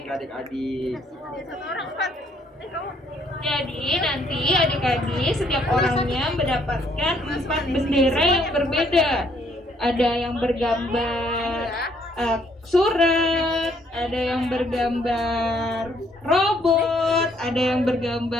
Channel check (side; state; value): both; normal; correlation 0.67